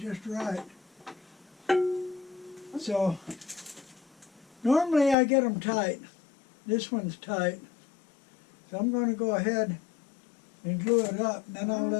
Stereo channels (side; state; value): right; drops out; at 5.2 s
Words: right. So, normally I get them tight. This one's tight. So I'm going to go ahead and glue it up. Then I'll